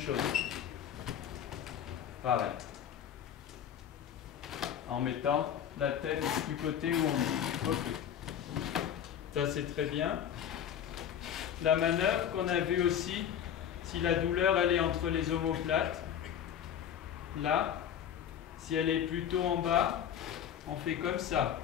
Pareil. En mettant la tête du côté où on est. Ok. Ça c'est très bien. La manœuvre qu'on a vue aussi, si la douleur elle est entre les omoplates, là, si elle est plutôt en bas, on fait comme ça,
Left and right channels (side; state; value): right; quieter; 9.3 dB